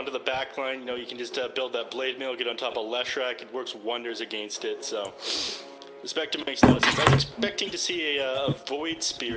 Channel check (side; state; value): both; identical; correlation 1.00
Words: the back line. You know, you can just build that blade mail, get on top of Leshrac. It works wonders against it, so... The Spectre makes a lot of sense. I was expecting to see a Void